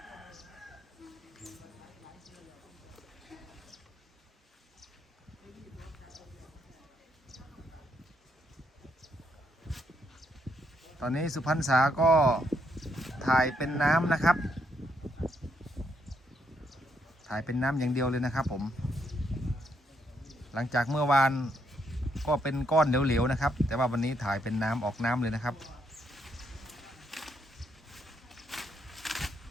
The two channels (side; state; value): both; normal; correlation 0.76